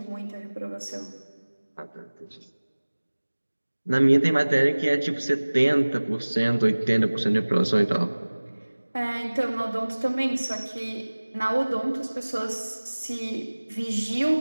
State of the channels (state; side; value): inverted; both; correlation -1.00